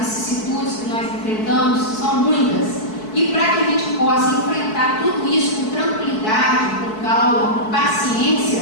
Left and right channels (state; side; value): late; right; 4.6 ms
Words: que nós enfrentamos, são muitas. E para que a gente possa enfrentar tudo isso com tranquilidade, com calma, com paciência,